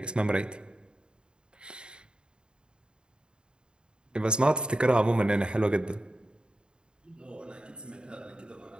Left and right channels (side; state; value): left; late; 0.050 ms